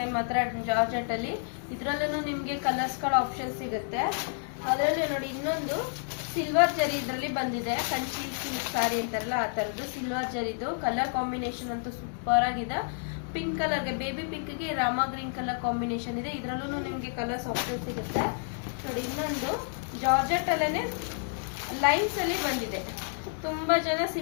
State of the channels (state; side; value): silent; right; digital silence